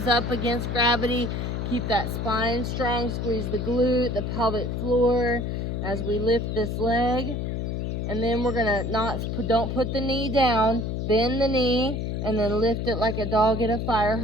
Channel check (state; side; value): noise; left; hum, 2 dB below the sound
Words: up against gravity. Keep that spine strong. Squeeze the glute, the pelvic floor as we lift this leg. And then we're going to don't put the knee down. Bend the knee and then lift it like a dog at a fire